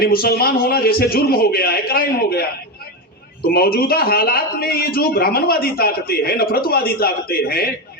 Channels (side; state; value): both; normal; correlation 0.14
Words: मुसलमान होना जैसे जुर्म हो गया है, क्राइम हो गया है। तो मौजूदा हालात में ये जो ब्राह्मणवादी ताकतें हैं, नफरतवादी ताकतें हैं,